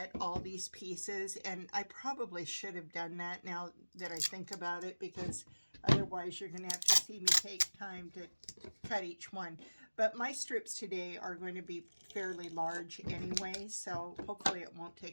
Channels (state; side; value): inverted; both; correlation -1.00